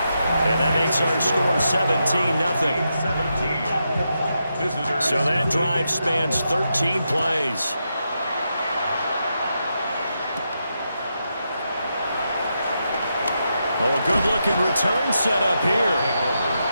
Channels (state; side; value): inverted; both; correlation -0.85